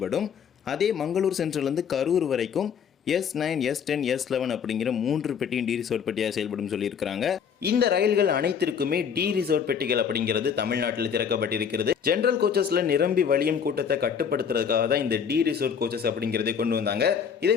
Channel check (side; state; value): right; quieter; 7.3 dB